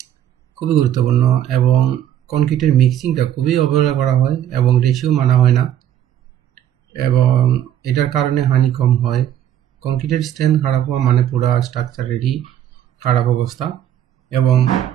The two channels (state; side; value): quieter; left; 11.0 dB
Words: খুবই গুরুত্বপূর্ণ, এবং কনক্রিটের মিক্সিংটা খুবই অবহেলা করা হয় এবং রেশিও মানা হয় না, এবং এটার কারণে হানি কম হয়। কনক্রিটের স্ট্রেংথ খারাপ হওয়া মানে পুরো স্ট্রাকচারেরই খারাপ অবস্থা, এবং